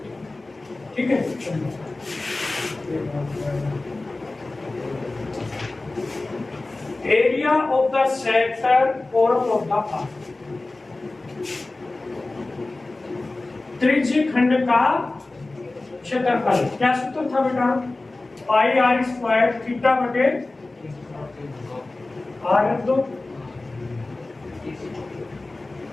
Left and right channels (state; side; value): quieter; right; 3.1 dB